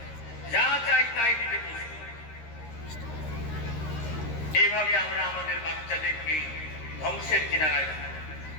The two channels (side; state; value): right; late; 13 ms